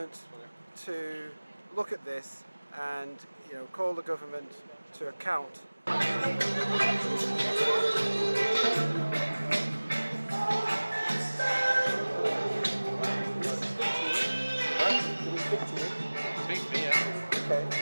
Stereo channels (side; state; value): both; inverted; correlation -1.00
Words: to look at this and, you know, call the government to account. Okay.